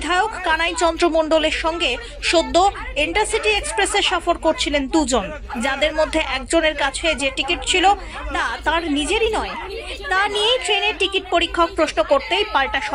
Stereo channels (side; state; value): both; identical; correlation 1.00